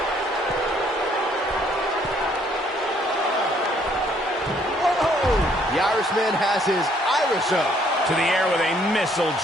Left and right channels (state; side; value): normal; both; correlation 0.65